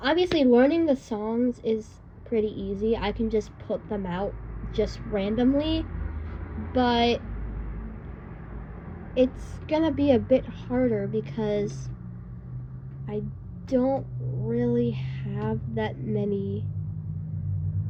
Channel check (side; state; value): both; identical; correlation 1.00